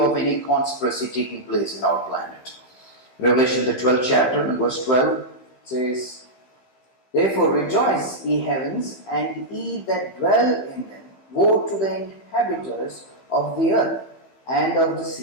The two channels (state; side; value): late; right; 16 ms